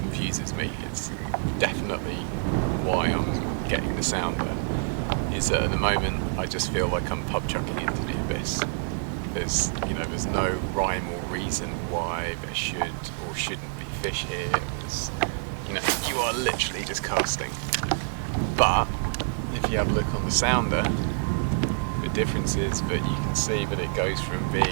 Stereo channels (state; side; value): silent; left; 58 dB below the other